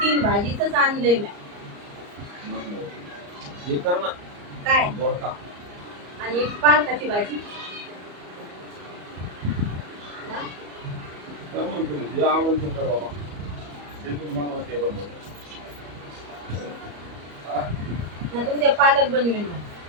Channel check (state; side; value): late; left; 34 ms